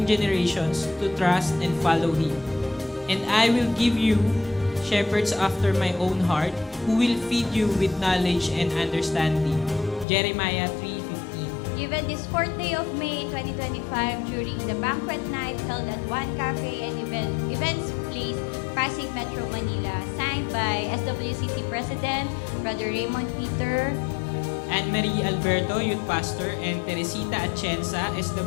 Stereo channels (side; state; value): right; drops out; at 10.1 s